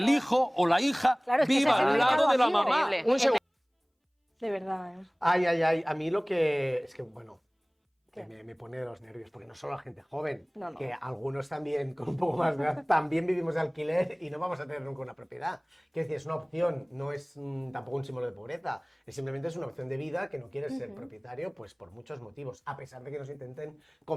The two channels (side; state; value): both; identical; correlation 1.00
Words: hijo o la hija Claro, es que ese viva es el al lado mercado de la libre. mamá. Increíble. Un segundo. De verdad, ¿eh? Ay, a mí lo que... Es que, bueno, que me pone de los nervios, porque no solo la gente joven, No, no. que algunos también, con un poco más de edad, también vivimos de alquiler y no vamos a tener nunca una propiedad. Quiero decir, es una opción, no es tampoco un símbolo de pobreza, simplemente es una opción de vida que no quieres ser propietario, pues por muchos motivos, a pesar de que nos intenten